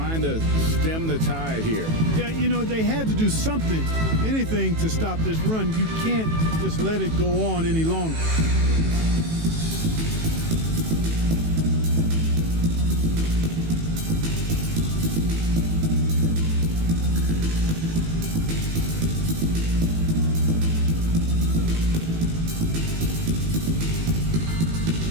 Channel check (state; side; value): late; left; 18 ms